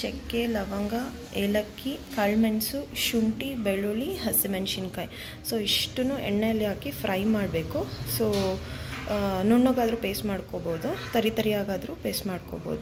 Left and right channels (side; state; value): both; identical; correlation 1.00